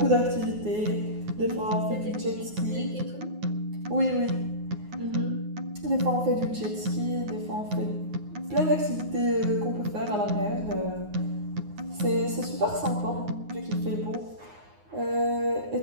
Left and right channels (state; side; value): late; left; 9.6 ms